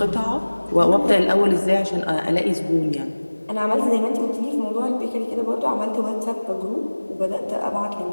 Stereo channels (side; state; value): both; inverted; correlation -1.00